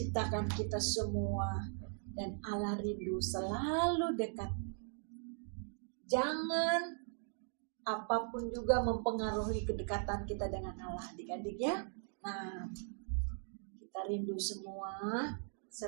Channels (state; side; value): silent; left; 52 dB below the other